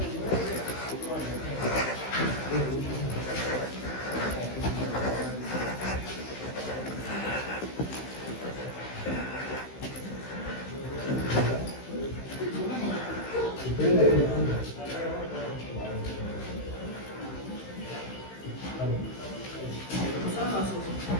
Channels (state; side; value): late; right; 15 ms